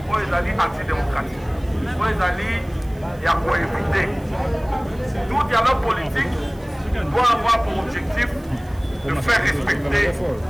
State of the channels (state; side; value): noise; right; hiss, 27 dB below the sound